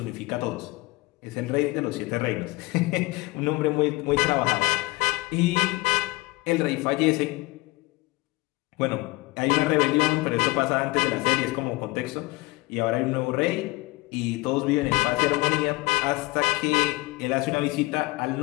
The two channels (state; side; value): quieter; right; 21.9 dB